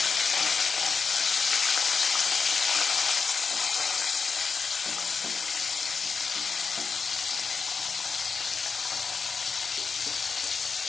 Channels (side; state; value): right; quieter; 5.1 dB